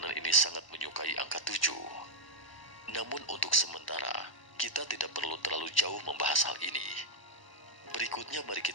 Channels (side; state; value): right; late; 1.1 ms